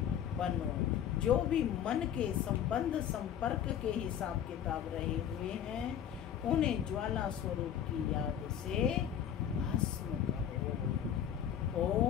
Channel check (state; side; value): quieter; right; 9.6 dB